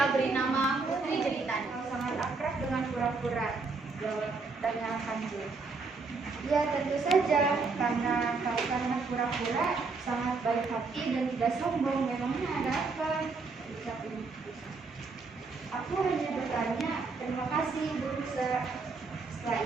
beri nama Putri Jeritan. Sangat akrab dengan kura-kura, jawab tanya Kancil. Ya tentu saja, karena kura-kura sangat baik hati dan tidak sombong. Memangnya ada apa? Ucap Ibu Rusa. Aku hanya bertanya, terima kasih Ibu Rusa. Setelah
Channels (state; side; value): quieter; left; 4.2 dB